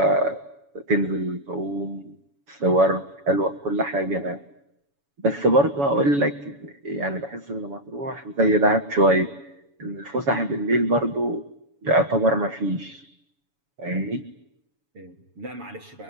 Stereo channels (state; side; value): late; left; 7.1 ms